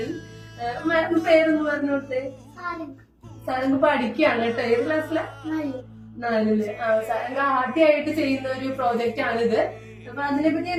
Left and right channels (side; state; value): both; identical; correlation 1.00